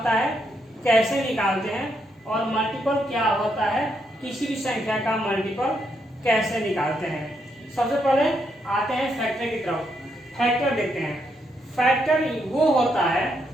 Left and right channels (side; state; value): both; normal; correlation 0.78